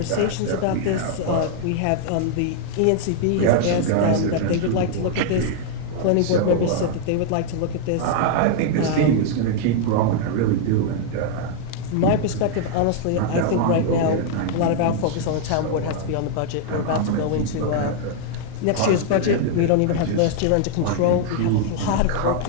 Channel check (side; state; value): both; different; correlation 0.00